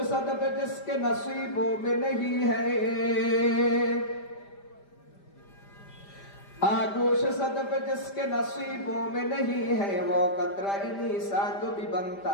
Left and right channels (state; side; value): late; right; 5.0 ms